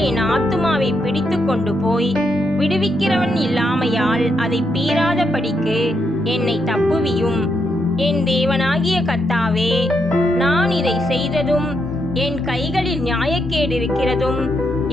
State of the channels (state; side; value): normal; both; correlation 0.80